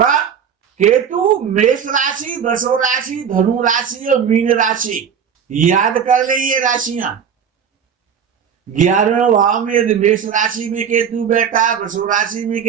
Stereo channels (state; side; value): quieter; left; 7.6 dB